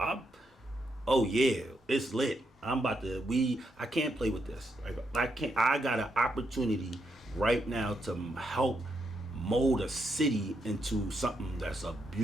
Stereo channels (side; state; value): both; normal; correlation 0.80